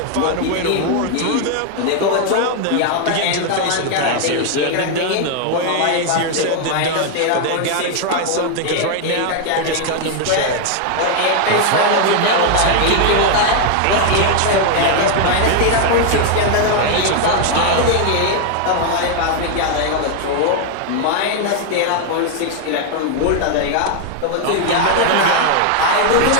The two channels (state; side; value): different; both; correlation 0.00